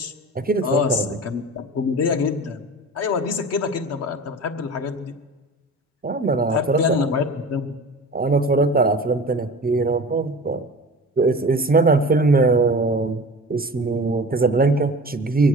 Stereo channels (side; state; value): both; normal; correlation 0.37